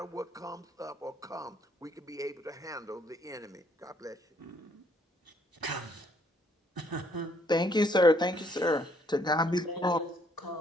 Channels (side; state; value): both; normal; correlation 0.67